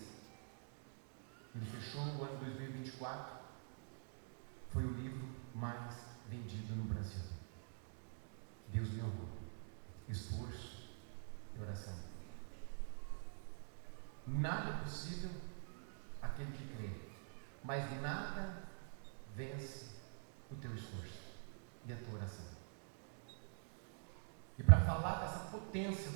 Ele fechou o ano 2024. Foi o livro mais vendido no Brasil. Deus me honrou. Esforço e oração. Nada é possível aquele que crê, mas nada vence o teu esforço e a tua oração. E para falar dessa potência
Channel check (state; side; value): silent; left; digital silence